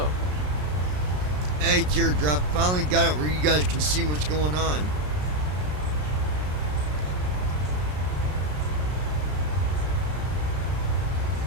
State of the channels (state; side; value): late; left; 33 ms